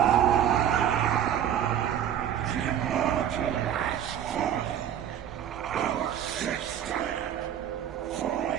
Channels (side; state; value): left; quieter; 9.9 dB